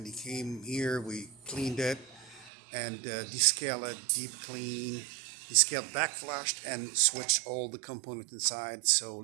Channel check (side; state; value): left; drops out; at 2.5 s